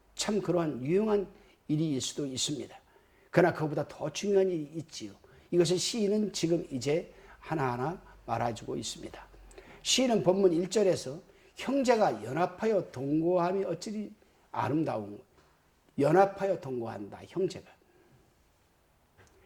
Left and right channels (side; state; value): both; identical; correlation 1.00